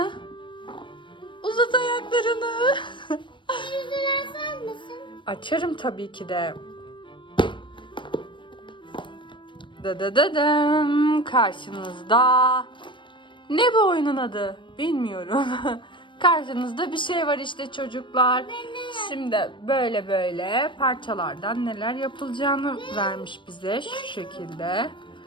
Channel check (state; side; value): late; right; 0.24 ms